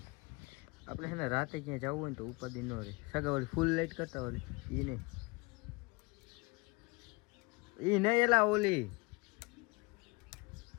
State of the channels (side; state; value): right; quieter; 27.6 dB